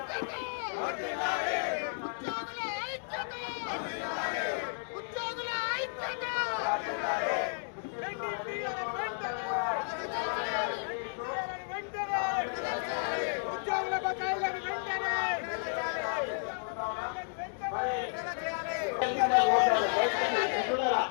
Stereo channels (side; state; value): right; silent; digital silence